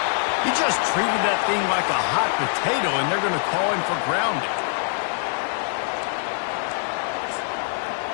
He just treated that thing like a hot potato, and they're going to call him for grounding.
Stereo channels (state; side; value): silent; right; 55 dB below the other